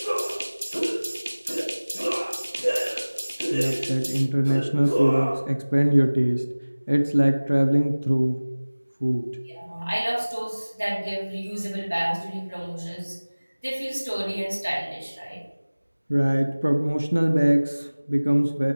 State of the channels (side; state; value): both; inverted; correlation -1.00